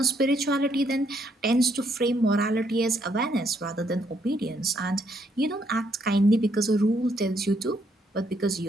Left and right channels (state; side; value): normal; both; correlation 0.72